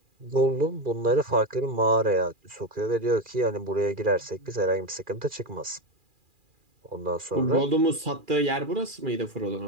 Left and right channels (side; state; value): left; late; 2.4 ms